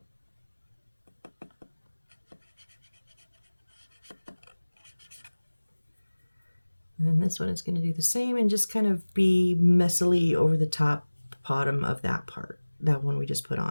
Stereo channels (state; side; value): inverted; both; correlation -1.00